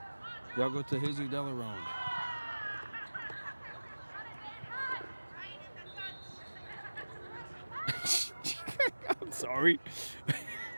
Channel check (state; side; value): inverted; both; correlation -1.00